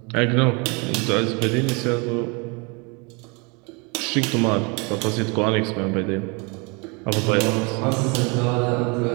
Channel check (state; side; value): quieter; left; 30.7 dB